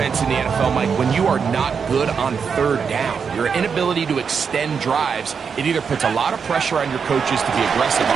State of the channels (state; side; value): quieter; left; 6.2 dB